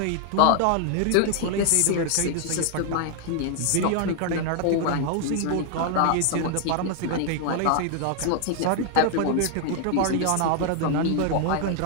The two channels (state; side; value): different; both; correlation 0.00